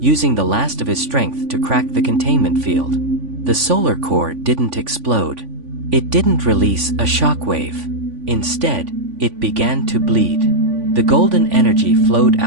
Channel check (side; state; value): left; late; 3.5 ms